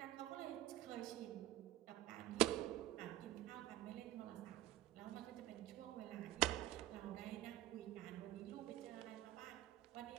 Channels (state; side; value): quieter; left; 14.4 dB